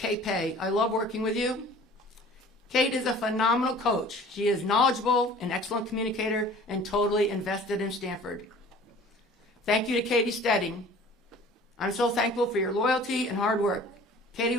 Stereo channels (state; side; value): normal; both; correlation 0.47